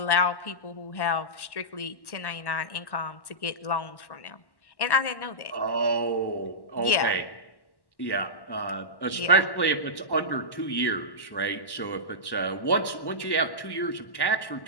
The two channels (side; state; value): right; late; 1.1 ms